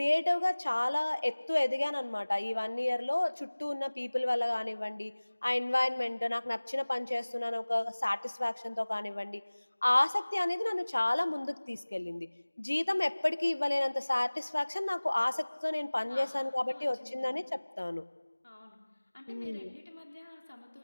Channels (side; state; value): both; inverted; correlation -1.00